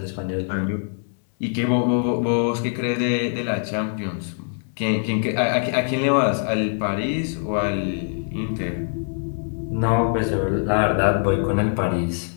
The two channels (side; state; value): right; silent; digital silence